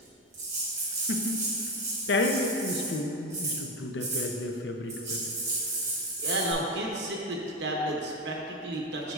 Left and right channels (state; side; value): normal; both; correlation 0.16